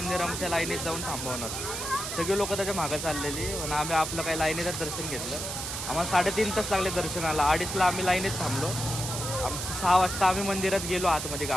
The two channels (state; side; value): noise; right; hiss, 5 dB below the sound